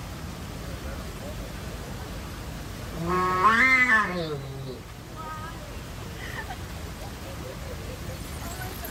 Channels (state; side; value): identical; both; correlation 1.00